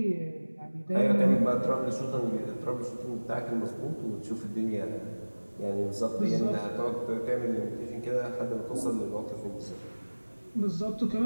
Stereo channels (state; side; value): inverted; both; correlation -1.00